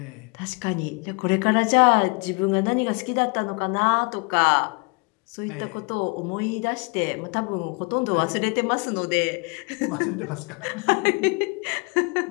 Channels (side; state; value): right; quieter; 30.4 dB